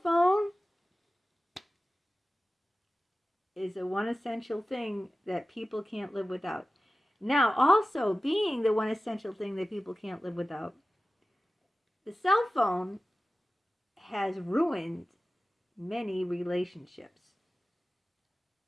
phone is the one essential thing that people can't live without. Now, also being the one essential thing that people can't live without, the cell phone has ruined many relationships.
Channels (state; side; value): normal; both; correlation 0.95